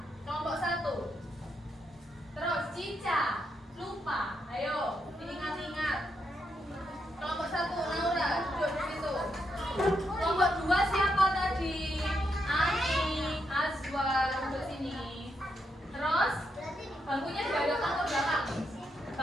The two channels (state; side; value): normal; both; correlation 0.81